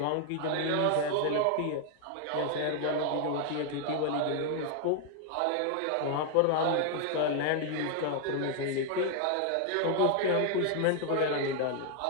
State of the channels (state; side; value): different; both; correlation 0.00